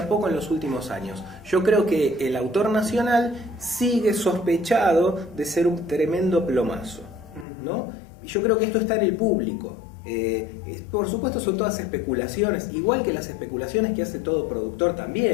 poco en los últimos años. Yo creo que el autor nacional sigue sospechado de ser un tremendo plomazo, ¿no? Y yo creo que esto está en el público. Por supuesto son todas especulaciones, igual que las especulaciones que hace todo productor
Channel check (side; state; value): right; drops out; at 7.5 s